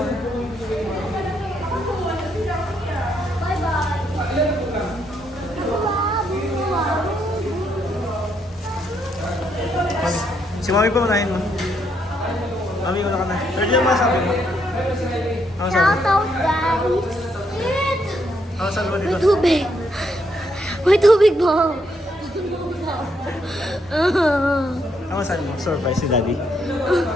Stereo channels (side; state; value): both; normal; correlation 0.75